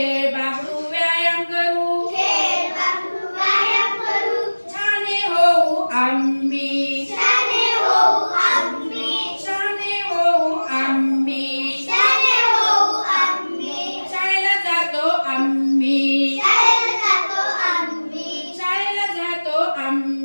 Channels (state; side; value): inverted; both; correlation -1.00